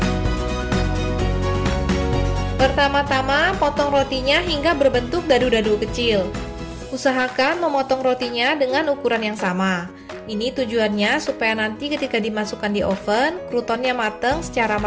Pertama-tama, potong rotinya hingga berbentuk dadu-dadu kecil. Usahakan memotong rotinya dengan ukuran yang sama. Ini tujuannya supaya nanti ketika dimasukkan di oven, krutonnya matang secara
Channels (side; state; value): both; identical; correlation 1.00